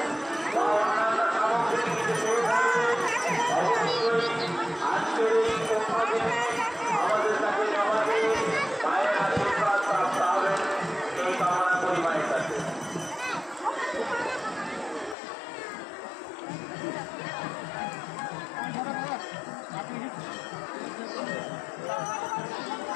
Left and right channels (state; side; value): drops out; right; at 15.2 s